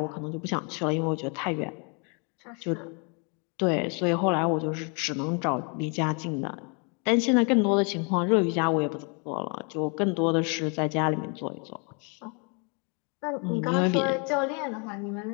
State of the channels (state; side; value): quieter; right; 35.0 dB